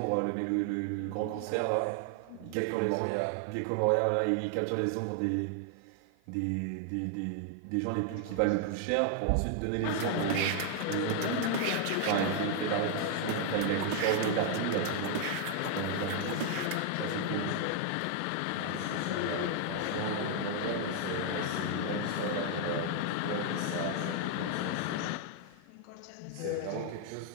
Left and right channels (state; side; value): different; both; correlation 0.00